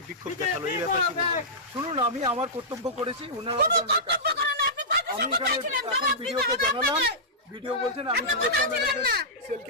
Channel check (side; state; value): both; normal; correlation -0.14